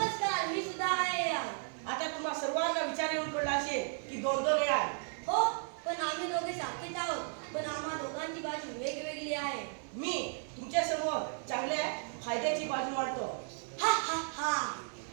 मी सुद्धा आहे यार। आता तुम्हा सर्वांना विचार येऊन पडला असेल की दोन दोन यार। हो, पण आम्ही दोघे सारखेच आहोत, पण आम्हा दोघांची बाजू वेगवेगळी आहे। मी तुमच्या समोर चांगल्या फायद्याची बाजू मांडतो। हा हा हा।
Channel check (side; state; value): left; silent; 55 dB below the other